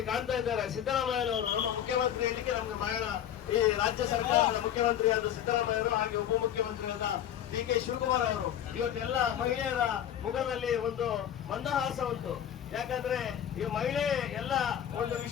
ಕಾಣ್ತಾ ಇದ್ದಾರೆ ಸಿದ್ದರಾಮಯ್ಯನವರು, ನಮ್ಮ ಮುಖ್ಯಮಂತ್ರಿ ಇಲ್ಲಿಗೆ ನಮ್ಗೆ ಬಹಳ ಈ ರಾಜ್ಯ ಸರ್ಕಾರದ ಮುಖ್ಯಮಂತ್ರಿಯಾದ ಸಿದ್ದರಾಮಯ್ಯರು, ಹಾಗೆ ಉಪಮುಖ್ಯಮಂತ್ರಿಯಾದ ಡಿ ಕೆ ಶಿವಕುಮಾರ್ ಅವರು. ಇವತ್ತೆಲ್ಲ ಮಹಿಳೆಯರ ಮುಖದಲ್ಲಿ ಒಂದು ಮಂದಹಾಸ ಉಂಟು. ಯಾಕಂದ್ರೆ ಈ ಮಹಿಳೆ ಎಲ್ಲ ಒಂದು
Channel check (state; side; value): quieter; right; 10.4 dB